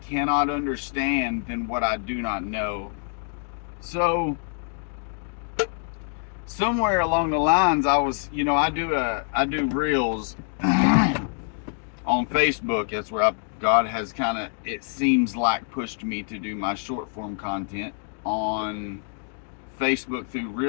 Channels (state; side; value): silent; right; 56 dB below the other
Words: cannot understand than what I do not know. So somewhere along the lines, I was, I do reels on Facebook. That's where God has kind of, it seems like, pushed me to do my short form content on Facebook through